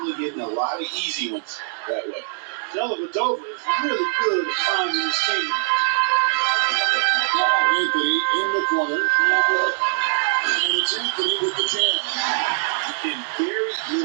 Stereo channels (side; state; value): left; silent; digital silence